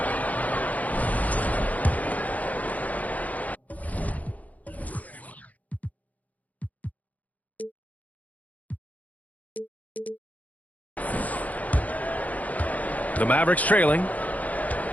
The Mavericks trailing.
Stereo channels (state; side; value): late; right; 0.075 ms